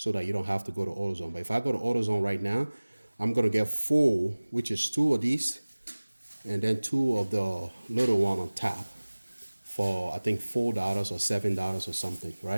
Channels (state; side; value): inverted; both; correlation -1.00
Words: that you don't have to go to AutoZone. But if I go to AutoZone right now, I'm gonna get 4, which is 2 of these, and then 2 of the little one on top for I think $4 or $7 or something,